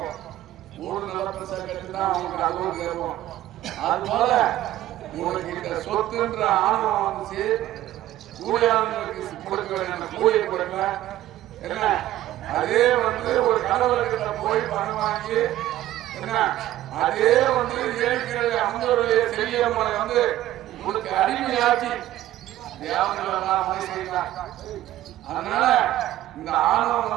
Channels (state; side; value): quieter; left; 14.1 dB